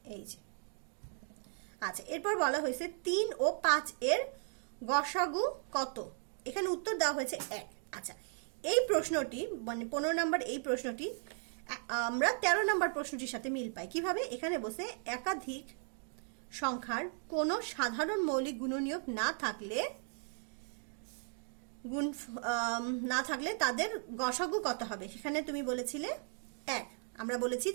এই যে আচ্ছা, এরপর বলা হয়েছে 3 ও 5 এর গসাগু কত। এখানে উত্তর দেওয়া হয়েছে 1। আচ্ছা, এই প্রশ্নটি মানে 15 নম্বর এই প্রশ্নটি আমরা 13 নম্বর প্রশ্নটির সাথে মিল পাই। কিভাবে, এখানে বসে একাধিক সংখ্যার কোনো সাধারণ মৌলিক গুণনীয়ক না থাকলে তাদের গসাগু কত হবে। সেখানে তুমি বলেছিলে 1, আমরা বলেছি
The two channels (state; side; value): silent; left; 53 dB below the other